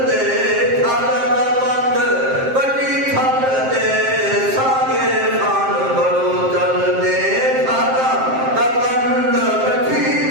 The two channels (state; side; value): late; left; 7.6 ms